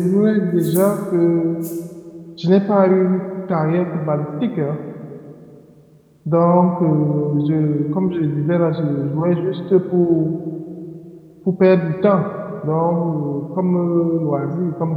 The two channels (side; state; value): both; identical; correlation 1.00